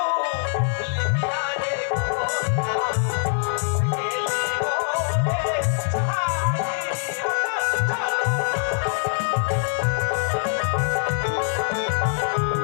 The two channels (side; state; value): right; silent; digital silence